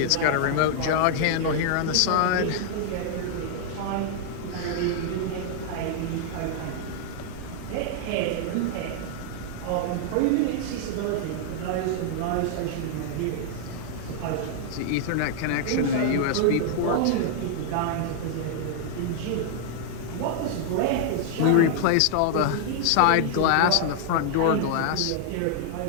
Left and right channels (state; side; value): different; both; correlation -0.01